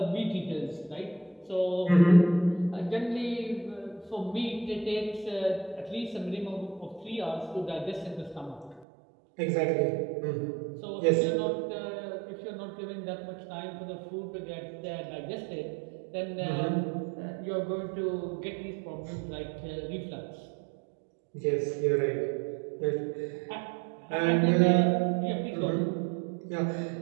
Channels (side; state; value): left; drops out; at 8.8 s